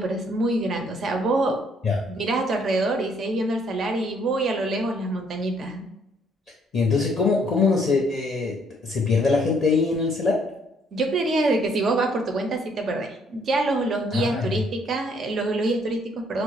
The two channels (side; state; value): both; normal; correlation 0.66